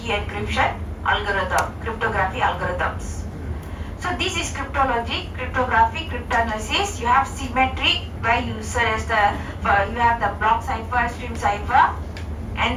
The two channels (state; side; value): identical; both; correlation 1.00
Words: encryption algorithm, cryptography algorithms. So this is cryptology, cryptography, cryptanalysis. You have symmetry where you have the block cipher, stream cipher,